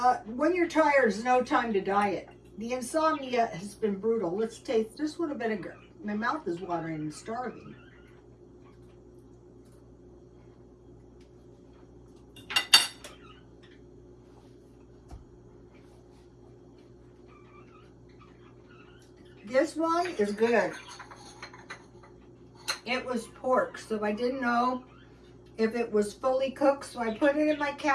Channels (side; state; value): both; identical; correlation 1.00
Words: When you're tired, there's no time to diet. The insomnia has been brutal. Let's taste this one a vinegar. My mouth is watering and starving. This one is good. It was pork, so I didn't know if it was fully cooked, so I put it in my